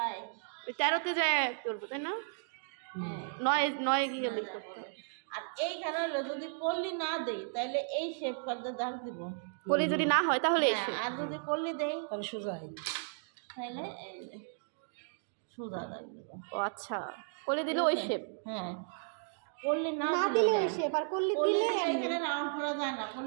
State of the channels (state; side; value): silent; left; digital silence